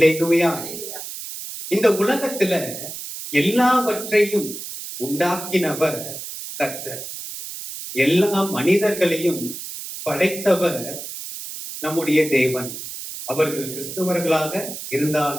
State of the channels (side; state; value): right; noise; hiss, 9 dB below the sound